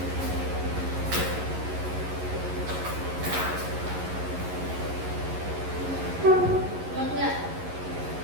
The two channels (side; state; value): left; late; 11 ms